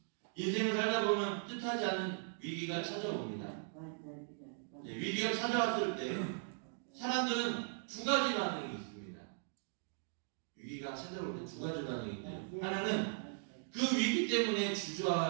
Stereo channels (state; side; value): silent; left; digital silence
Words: 인생을 살다 보면 뜻하지 않은 위기가 찾아옵니다. 네, 위기가 찾아왔을 때 사람들은 두 가지 반응이 있습니다. 위기가 찾아올 때 두 가지 반응이 있는데, 하나는 그 위기 때문에